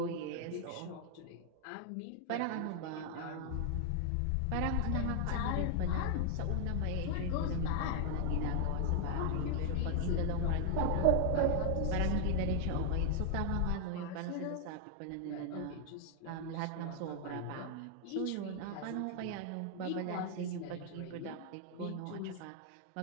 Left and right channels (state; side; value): different; both; correlation 0.00